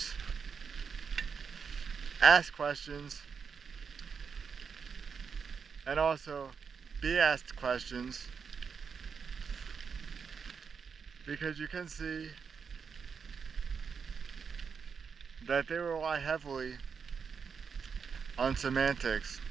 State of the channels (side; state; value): left; quieter; 6.1 dB